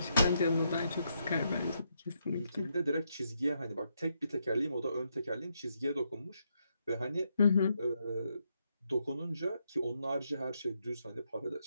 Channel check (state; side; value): inverted; both; correlation -0.79